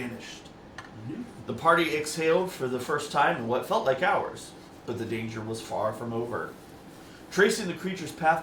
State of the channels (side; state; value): both; identical; correlation 1.00